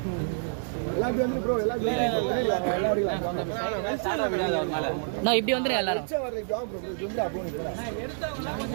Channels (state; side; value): silent; left; digital silence